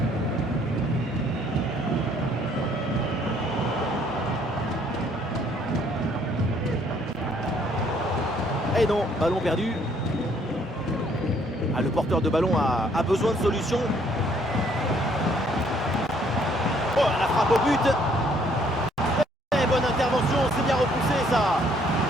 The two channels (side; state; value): both; normal; correlation 0.64